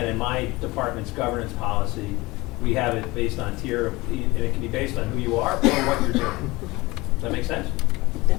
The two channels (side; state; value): right; quieter; 21.7 dB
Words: in my department's governance policy, we have it based on tier, and it can be based on who you are or what you're doing. Does that make sense?